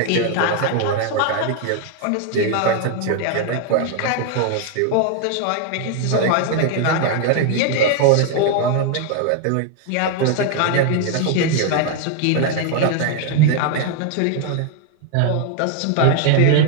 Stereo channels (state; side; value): different; both; correlation 0.00